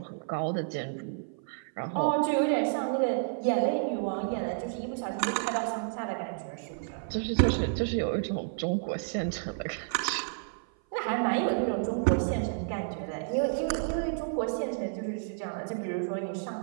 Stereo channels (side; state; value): left; silent; 55 dB below the other